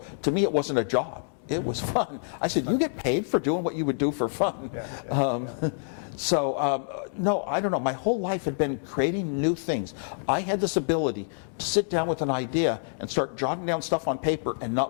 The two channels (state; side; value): silent; right; digital silence